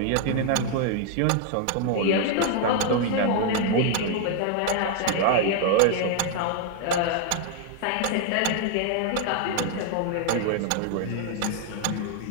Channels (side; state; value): both; different; correlation 0.00